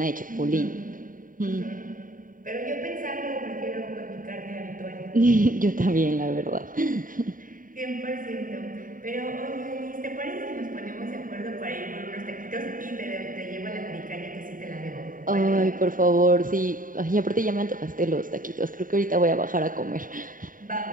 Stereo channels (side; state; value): left; late; 0.39 ms